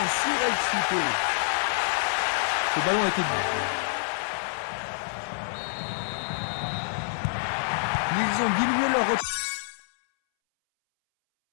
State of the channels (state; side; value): silent; right; 60 dB below the other